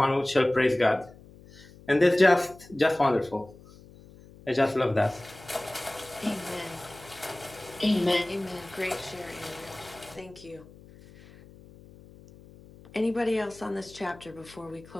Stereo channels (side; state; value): left; noise; hum, 22 dB below the sound